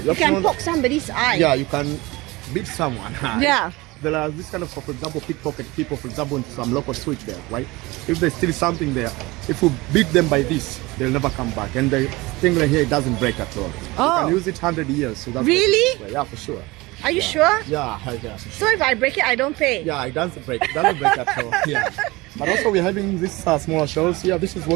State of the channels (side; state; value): left; quieter; 21.9 dB